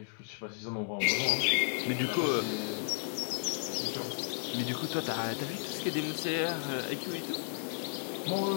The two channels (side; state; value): right; silent; digital silence